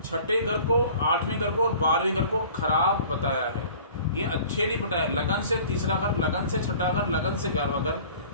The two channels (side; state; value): both; inverted; correlation -0.47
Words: छठे घर को, आठवें घर को और 12वें घर को खराब बताया है। ये अच्छे नहीं बताया। लगन से तीसरा घर, लगन से छठा घर, लगन से 11वां घर,